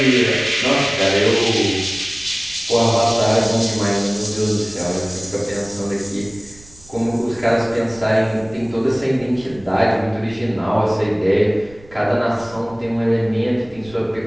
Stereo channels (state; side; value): noise; right; rumble, 23 dB below the sound